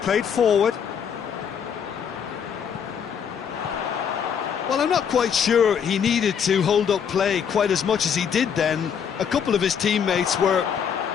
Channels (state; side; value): quieter; right; 7.6 dB